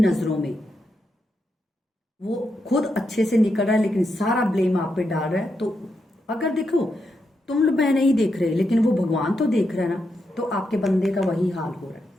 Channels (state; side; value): normal; both; correlation 0.84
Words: नजरों में, वो खुद अच्छे से निकल रहा है लेकिन सारा ब्लेम आप पे डाल रहा है, तो अगर देखो तुम लोग मैं नहीं देख रहे लेकिन वो भगवान तो देख रहा है ना, तो आपके बंदे का वही हाल हो रहा है।